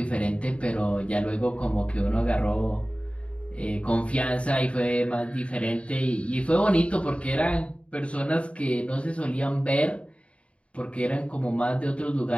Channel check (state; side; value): late; right; 0.061 ms